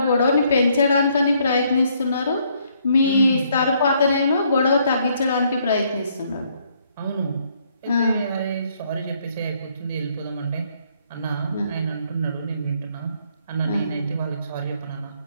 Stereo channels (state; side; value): inverted; both; correlation -0.69